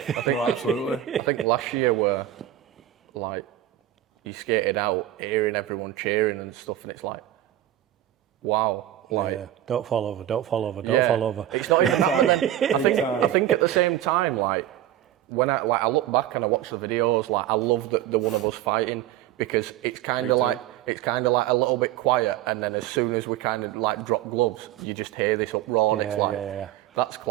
what I mean? Absolutely. I think last year were like you skated out, hearing everyone cheering and stuff, and it's like, wow, like Don't fall over, don't fall over, don't yeah, fall over. It's not even that. And then I think at the same time, like when I look back and I watch the videos, like I love the one of us fighting because it's kind of like a little bit quiet, and then as soon as we kind of like drop gloves, you just hear this uproar, and it's like that's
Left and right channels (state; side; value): quieter; left; 12.8 dB